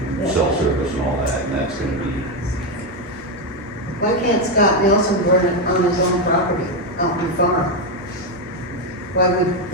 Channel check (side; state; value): both; normal; correlation 0.07